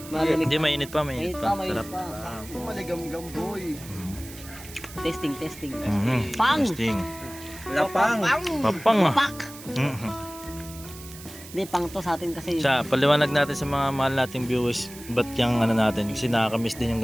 malamig. Hindi, mainit pa, Mainit mainit pa, pa. mainit Sarap. pa. Maligam-gam, boy. Testing, testing. Mhm. Pang! Testing. Lapang. Papang ah. Pak! Mhm. Hindi, pang to sa atin kasi. Siya, paliwanag natin sa mga mahal nating viewers ba't yung ano natin. Kasi nakakamiss din yung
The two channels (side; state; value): right; noise; hiss, 16 dB below the sound